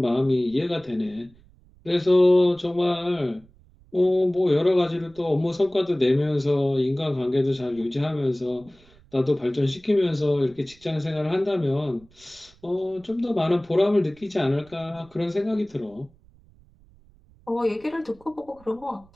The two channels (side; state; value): right; noise; rumble, 28 dB below the sound